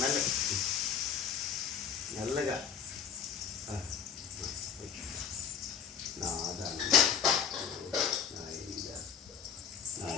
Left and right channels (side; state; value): right; quieter; 7.5 dB